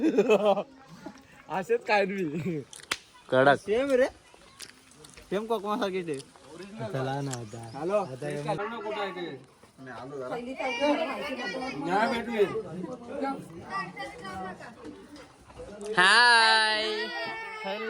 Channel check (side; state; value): both; identical; correlation 1.00